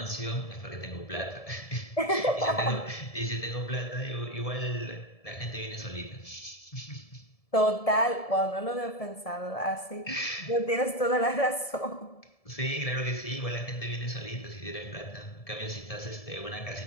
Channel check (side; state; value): right; late; 1.7 ms